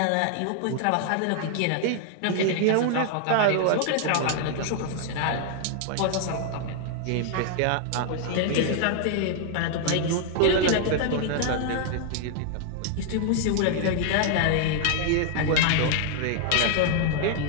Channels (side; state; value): both; different; correlation 0.00